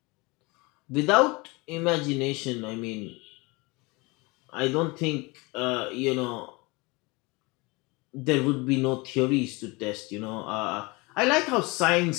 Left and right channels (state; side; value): quieter; right; 25.5 dB